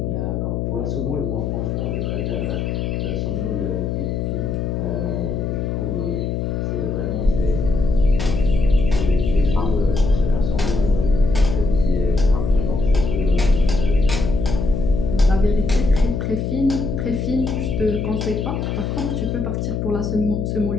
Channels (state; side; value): noise; left; hum, 1 dB below the sound